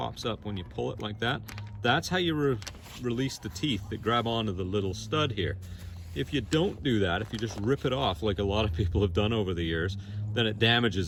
up when you pull it like that. That's how you release the teeth that grab onto the little stud here. If you don't do that, if you just rip it off like a lot of people have done over the years, then it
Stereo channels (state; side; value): identical; both; correlation 1.00